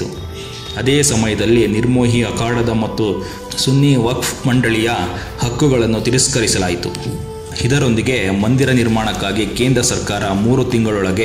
ಅದೇ ಸಮಯದಲ್ಲಿ ನಿರ್ಮೋಹಿ ಅಖಾಡದ ಮತ್ತು ಸುನ್ನಿ ವಕ್ಫ್ ಮಂಡಳಿಯ ಹಕ್ಕುಗಳನ್ನು ತಿರಸ್ಕರಿಸಲಾಯಿತು. ಇದರೊಂದಿಗೆ ಮಂದಿರ ನಿರ್ಮಾಣಕ್ಕಾಗಿ ಕೇಂದ್ರ ಸರ್ಕಾರ 3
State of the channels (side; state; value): both; identical; correlation 1.00